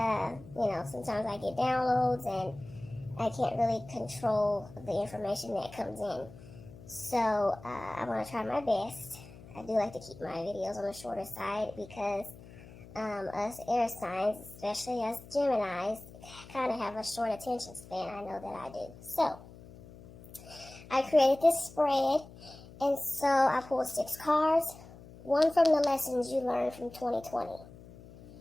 you know, sometimes I get downloads and I can't really control the information that comes in. So, I'm going to try my best. I do like to keep my videos on the shorter side because us air signs, especially us Geminis, kind of have a short attention span. I know that I do. So, I created this spread, and so I pulled 6 cards, one from the lessons you learned from 2020.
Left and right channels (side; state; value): left; noise; hum, 18 dB below the sound